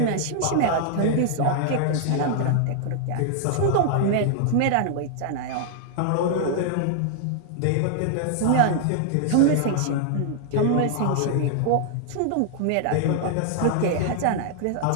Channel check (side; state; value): both; different; correlation -0.01